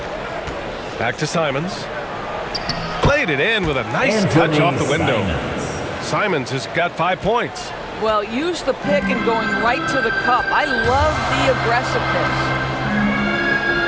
Back to Simons. Played it in with a nice touch off the window. Simons has got 5 points. Well, use the pick and going right to the cup. I love the aggressiveness.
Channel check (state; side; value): identical; both; correlation 1.00